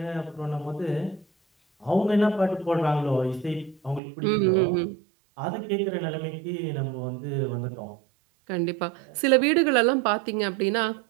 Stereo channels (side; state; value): left; drops out; at 4.0 s